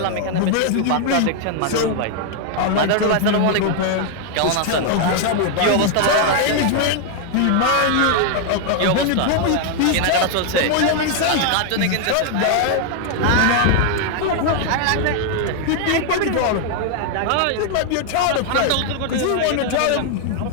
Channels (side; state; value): both; different; correlation 0.00